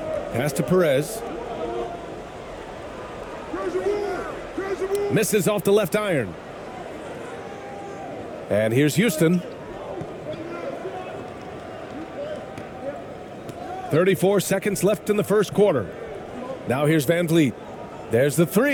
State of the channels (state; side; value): identical; both; correlation 1.00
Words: Pass to Perez. Misses off the left iron. And here's Houston. 34 seconds left in the first quarter. Now here's Van Vliet. There's the